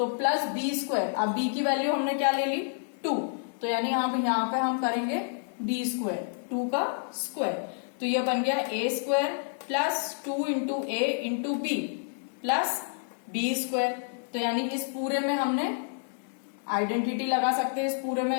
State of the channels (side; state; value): right; silent; digital silence